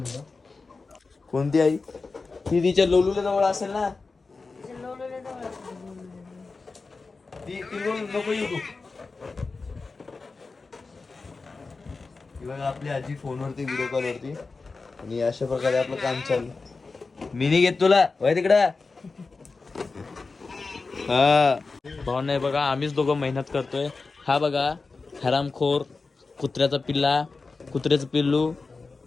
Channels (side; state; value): right; quieter; 4.1 dB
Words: कोणती आई ती तिच्या लोलूला जवळ असेल ना. ती नको येऊ तू. बघा आपली आजी फोनवरती व्हिडिओ कॉल वरती आणि अशा प्रकारे आपलं काम चालू. मी नाही घेत तुला वय तिकडं. हा भाऊ नाही बघा आम्हीच दोघं मेहनत करतोय. हा बघा हरामखोर कुत्र्याचा पिल्ला, कुत्र्याचं पिल्लू.